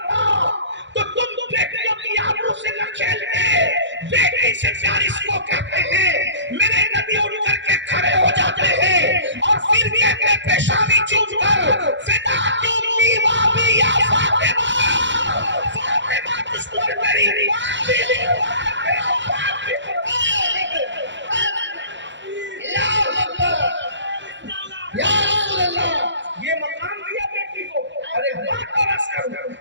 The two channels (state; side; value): late; left; 0.53 ms